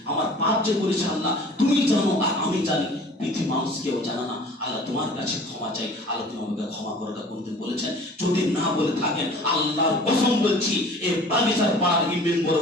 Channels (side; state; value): both; normal; correlation 0.47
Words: আমার পাপ যে করেছে আল্লাহ তুমি জানো আর আমি জানি, পৃথিবী মানুষ কেউ জানা না, আল্লাহ তোমার কাছে ক্ষমা চাই, আল্লাহ তুমি আমাকে ক্ষমা করাটা কোনদিন বলেছেন? যদি না বলে থাকেন আল্লাহর কসম বলছি, এই বাগিচার পাড়ার ইমাম